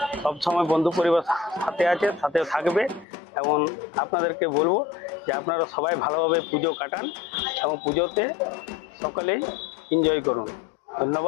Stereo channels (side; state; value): right; drops out; at 3.1 s